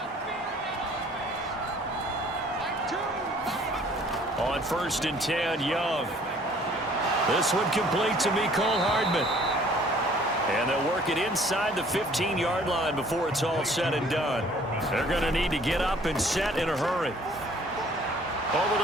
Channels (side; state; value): both; normal; correlation 0.56